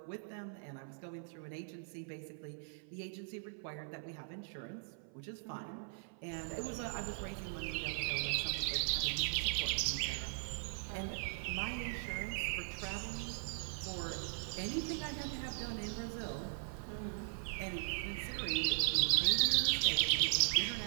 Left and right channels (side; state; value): left; silent; 51 dB below the other